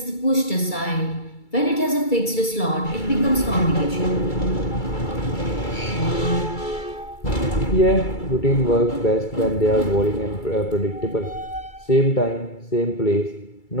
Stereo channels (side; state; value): right; late; 2.3 ms